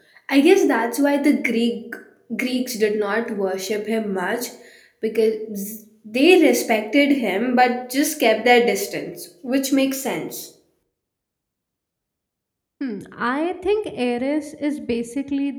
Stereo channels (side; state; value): both; identical; correlation 1.00